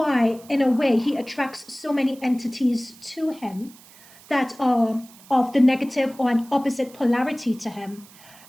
in a way, he attracts so many entities to him that are of the negative or an opposite polarity to him,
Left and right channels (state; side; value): noise; right; hiss, 23 dB below the sound